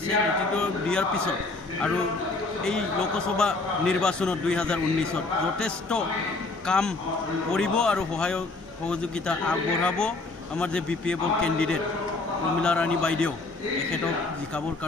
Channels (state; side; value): quieter; right; 3.4 dB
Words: নেতৃত্ব দিয়াৰ পিছত আৰু এই লোকসভা নিৰ্বাচনত 2019ত যথেষ্ট কাম কৰিব আৰু সহযোগিতা আগবঢ়াব। আমাৰ যে বিপিএফৰ কেণ্ডিডেট প্ৰমীলা ৰাণী বাইদেউ এখেতক জিকাবৰ